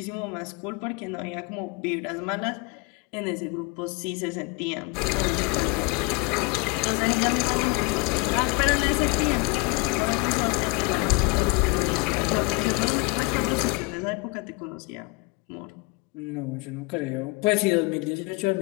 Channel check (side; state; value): right; quieter; 26.1 dB